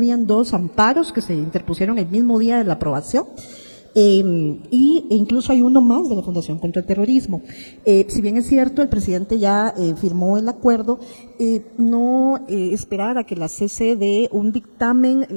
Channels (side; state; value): both; inverted; correlation -1.00